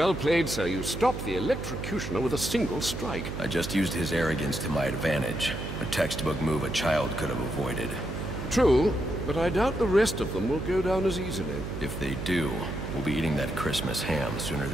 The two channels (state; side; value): noise; right; hum, 6 dB below the sound